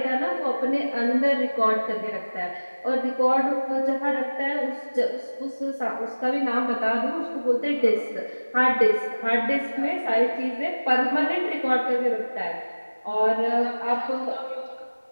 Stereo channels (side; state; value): both; inverted; correlation -1.00